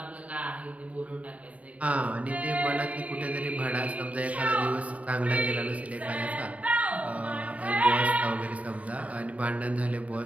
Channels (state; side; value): late; left; 0.068 ms